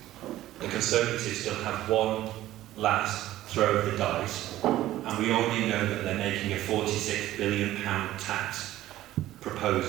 The Conservatives still have one last throw of the dice, and we already know that they're making a £46 billion tax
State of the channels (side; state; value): left; quieter; 14.6 dB